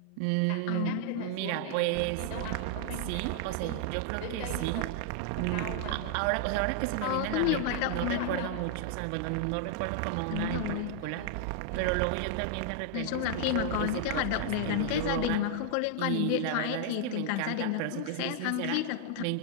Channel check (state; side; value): different; both; correlation 0.00